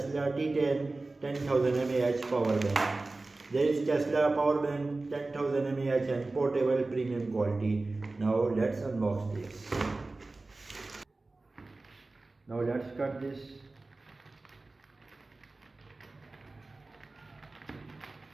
T10 10,000 mAh power bank. There is Tesla power bank 10,000 mAh and portable premium quality. Now let's unbox this. Now let's cut this.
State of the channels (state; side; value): quieter; left; 3.3 dB